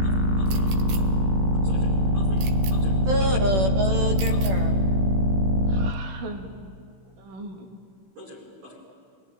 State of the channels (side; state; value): left; late; 16 ms